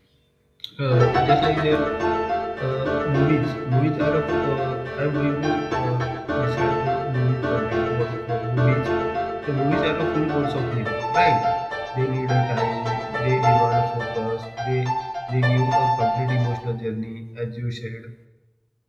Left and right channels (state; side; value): identical; both; correlation 1.00